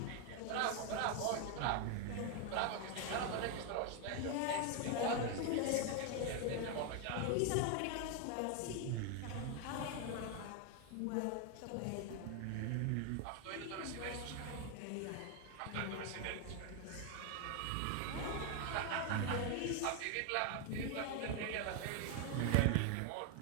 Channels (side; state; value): both; different; correlation 0.01